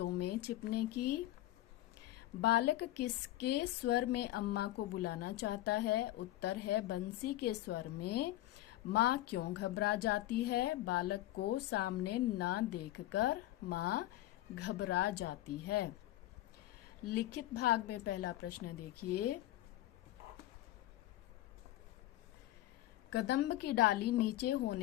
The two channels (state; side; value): quieter; right; 15.3 dB